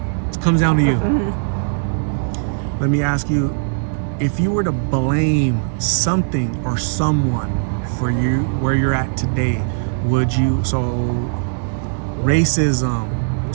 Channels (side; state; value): left; silent; digital silence